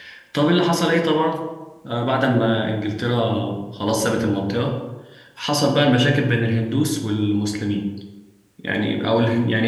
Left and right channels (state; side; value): identical; both; correlation 1.00